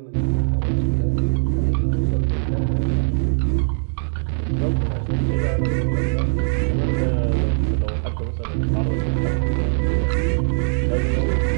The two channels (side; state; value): left; silent; digital silence